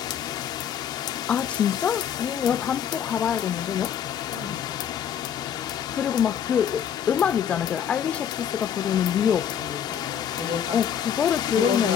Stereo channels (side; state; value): right; quieter; 8.7 dB